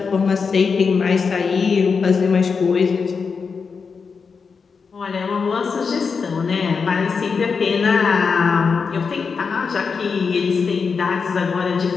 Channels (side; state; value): right; quieter; 5.4 dB